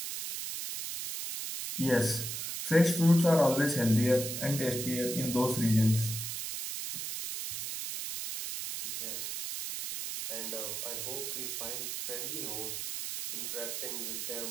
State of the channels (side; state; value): right; noise; hiss, 4 dB below the sound